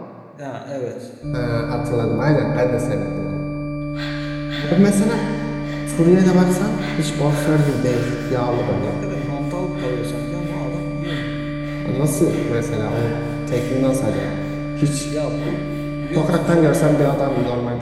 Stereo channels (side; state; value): both; identical; correlation 1.00